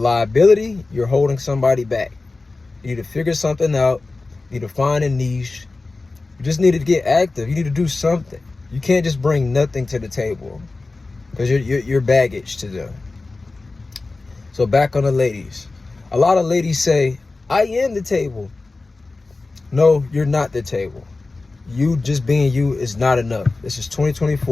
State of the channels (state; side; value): quieter; right; 3.5 dB